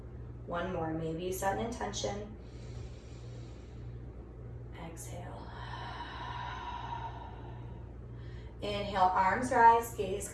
1 more. Maybe you set an intention. Exhale. Inhale, arms rise, gaze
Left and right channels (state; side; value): identical; both; correlation 1.00